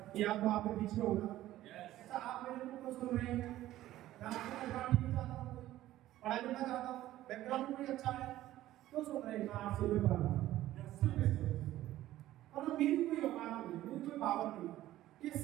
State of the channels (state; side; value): quieter; left; 14.5 dB